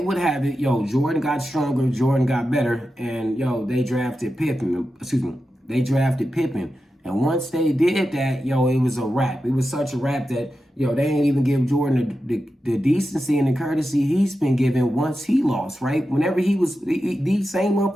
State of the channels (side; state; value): both; normal; correlation 0.91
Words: would have it, yo, Jordan got stronger, Jordan got better, and yo, they drafted Pippen. They drafted Pippen. And once they did that, yo, it was a wrap. It was such a wrap that, yo, they ain't even give Jordan the decency and the courtesy he's been given once he lost, right? Whenever he was, these same